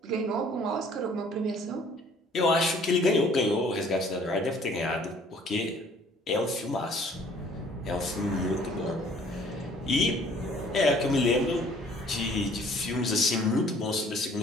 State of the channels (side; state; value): both; normal; correlation 0.56